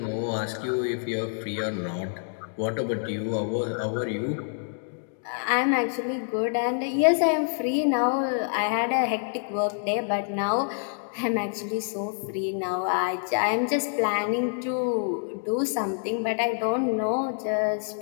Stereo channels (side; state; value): right; silent; digital silence